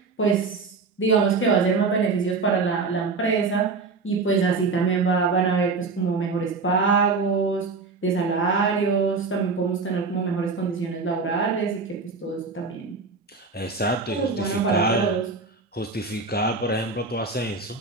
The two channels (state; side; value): quieter; left; 4.2 dB